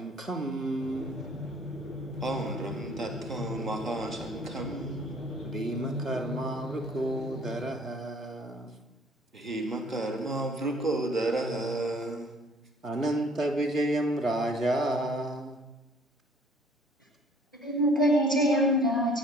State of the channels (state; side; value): normal; both; correlation 0.56